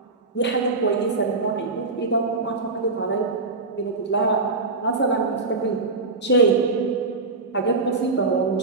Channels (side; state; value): left; quieter; 3.7 dB